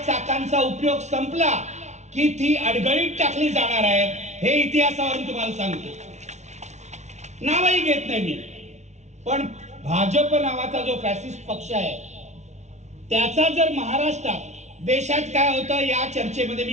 चाकांचा उपयोग संपला की ती अडगळीत टाकली जाणार आहे हे इतिहासावरून तुम्हाला सांगतो. नावही घेत नाही मी. पण भाजप नावाचा जो फॅसिस्ट पक्ष आहे त्याचा जर महाराष्ट्रात, देशात काय होतं या चर्चेमध्ये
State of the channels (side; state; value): left; late; 0.33 ms